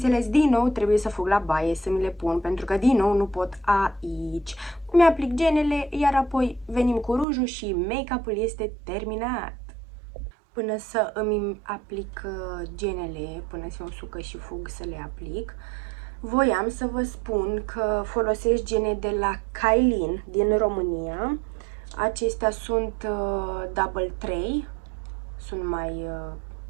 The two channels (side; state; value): left; drops out; at 7.2 s